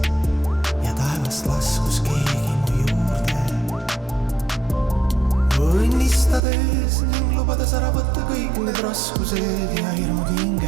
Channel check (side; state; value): left; drops out; at 6.4 s